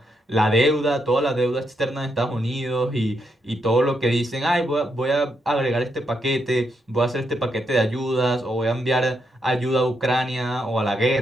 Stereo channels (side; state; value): both; normal; correlation 0.80